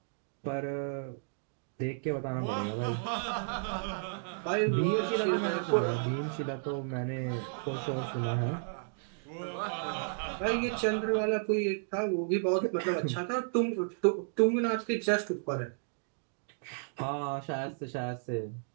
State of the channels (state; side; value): silent; left; digital silence